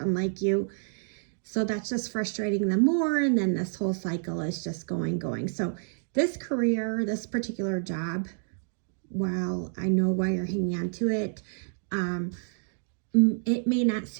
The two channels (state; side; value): silent; left; digital silence